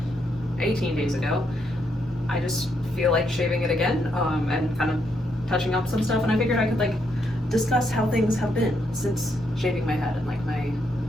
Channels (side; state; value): both; normal; correlation 0.77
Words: 18 days ago. I just feel like shaving it again and kind of touching up some stuff, and I figured I could like discuss how things have been since shaving my head and like